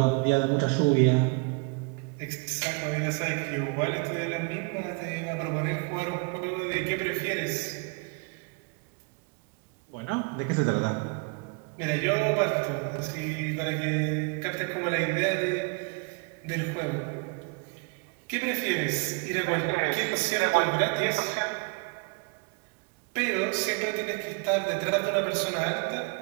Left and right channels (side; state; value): left; quieter; 32.6 dB